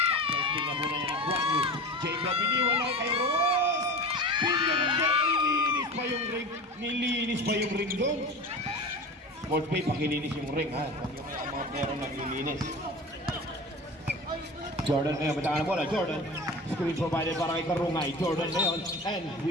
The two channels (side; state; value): both; normal; correlation 0.33